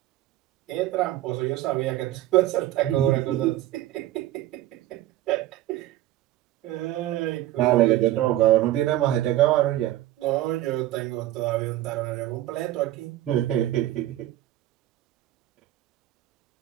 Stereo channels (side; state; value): left; quieter; 14.5 dB